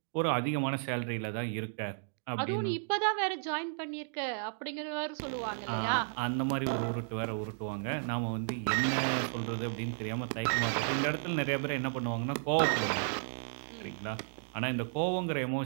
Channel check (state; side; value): silent; left; digital silence